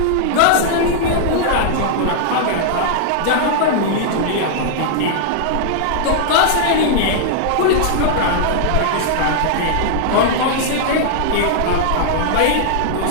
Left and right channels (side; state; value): both; different; correlation -0.01